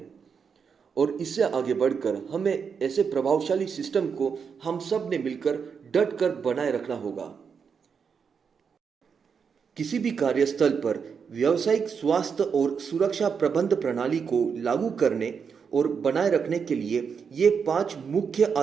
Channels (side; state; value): left; quieter; 6.3 dB